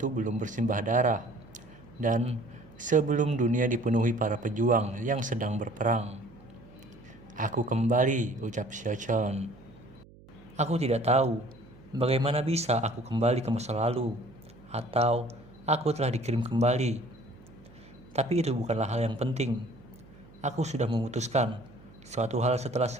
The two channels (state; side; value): noise; right; hum, 23 dB below the sound